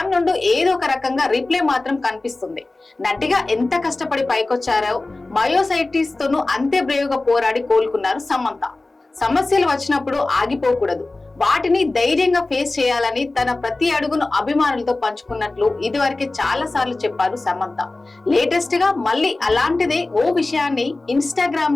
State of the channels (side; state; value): right; quieter; 3.1 dB